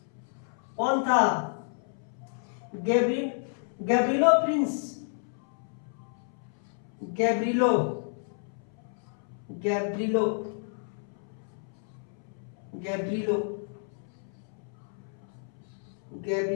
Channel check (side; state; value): right; silent; 57 dB below the other